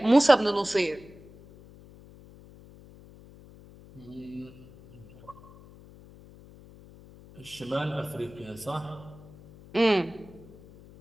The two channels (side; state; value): left; noise; hum, 21 dB below the sound